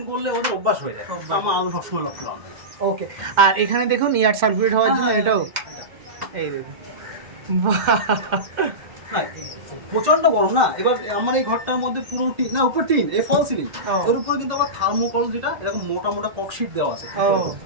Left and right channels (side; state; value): left; late; 2.1 ms